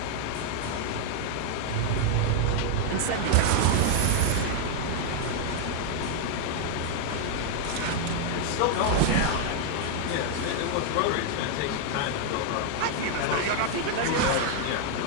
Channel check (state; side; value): different; both; correlation 0.00